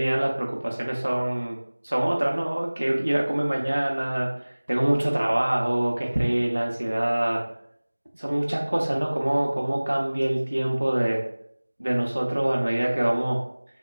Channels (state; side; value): inverted; both; correlation -1.00